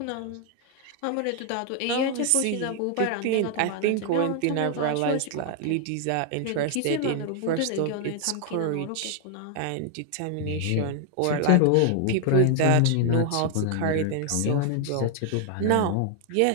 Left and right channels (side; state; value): both; different; correlation 0.00